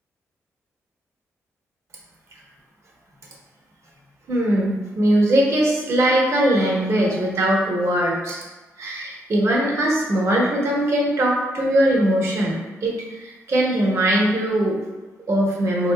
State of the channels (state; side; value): normal; both; correlation 0.75